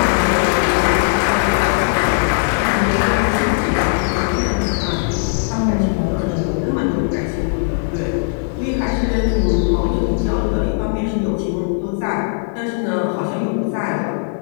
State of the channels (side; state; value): right; silent; 59 dB below the other